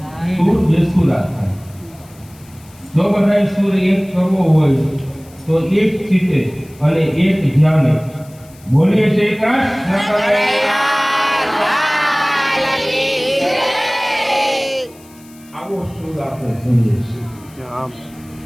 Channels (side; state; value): left; noise; hiss, 26 dB below the sound